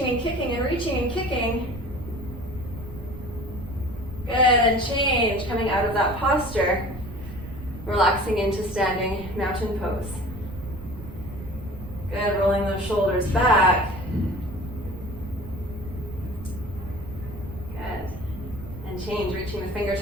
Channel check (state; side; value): noise; right; rumble, 12 dB below the sound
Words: and kicking and reaching and kicking. Good, and change, coming out of that posture. Relaxing into standing mountain pose. Good, rolling those shoulders back. Good. And change, reaching the